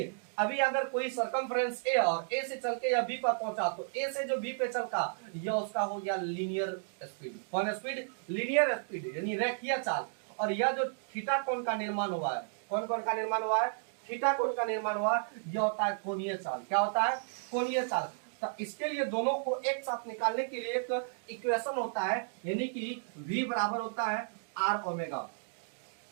अभी अगर कोई सरकमफ्रेंस ए और ए से चल के या बी पर पहुंचा, तो ए से जो बी पे चलता यह उसका हो गया लीनियर स्पीड। कौन स्पीड, लीनियर स्पीड, यानी रेखीय चाल। और यह जो थीटा कोण का निर्माण हुआ है, कौन कोण का निर्माण हुआ है, थीटा कोण का निर्माण हुआ, यह होता है कोणीय चाल। क्या होता है, कोणीय चाल। तो इसके लिए दोनों को एक साथ निकालने के लिए एक इक्वेशन होता है, यानी कि v बराबर होता है आर ओमेगा,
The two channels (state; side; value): silent; left; digital silence